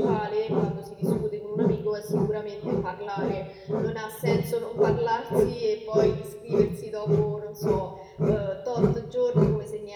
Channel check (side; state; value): both; identical; correlation 1.00